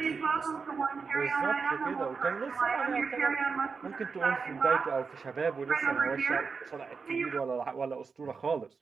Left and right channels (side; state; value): left; quieter; 5.1 dB